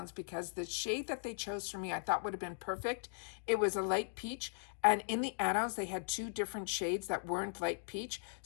because the shade that they chose for me I thought would have been perfect. It was a light peach, and in the add-ons they had two different shades that weren't light peach,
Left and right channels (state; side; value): silent; right; digital silence